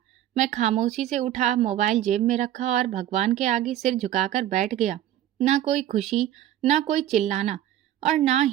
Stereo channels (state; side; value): quieter; left; 12.3 dB